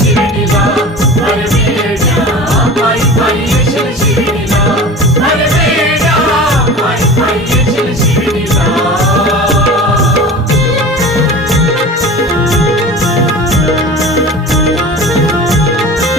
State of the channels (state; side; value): normal; both; correlation 0.35